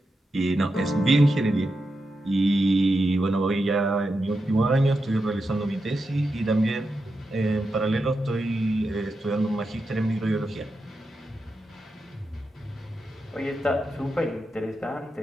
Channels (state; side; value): normal; both; correlation 0.88